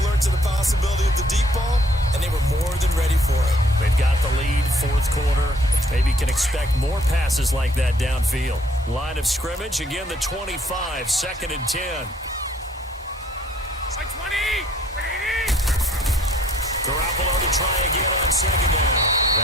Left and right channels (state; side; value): normal; both; correlation 0.61